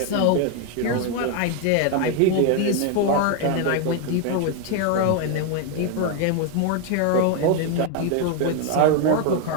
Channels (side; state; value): both; different; correlation 0.01